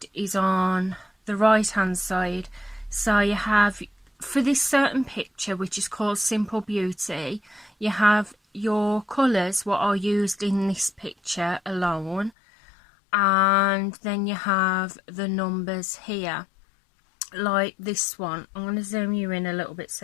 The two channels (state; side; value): drops out; right; at 12.3 s